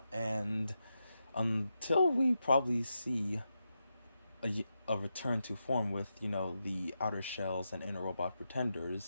and until we probably see a return to form with, the outer shells and inner robot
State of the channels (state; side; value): inverted; both; correlation -0.87